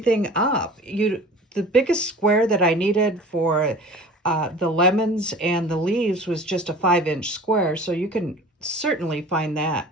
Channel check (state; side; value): normal; both; correlation 0.42